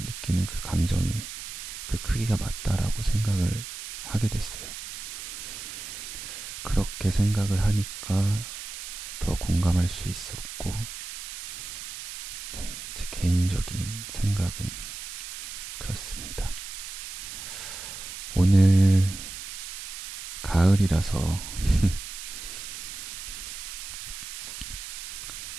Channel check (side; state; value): right; noise; hiss, 9 dB below the sound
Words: 그 감정이 그 크기가 맞다라고 생각을 하게 됐어요. 그렇게 생각을 하니까 더 공감할 수 있었고, 네, 제 개인적인 생각은 그렇습니다. 오늘 가을이라서